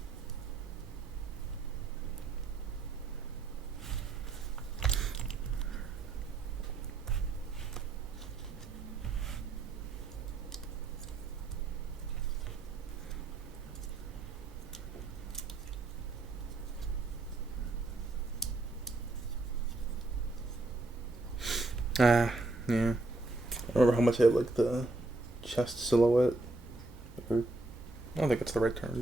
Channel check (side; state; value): left; quieter; 3.1 dB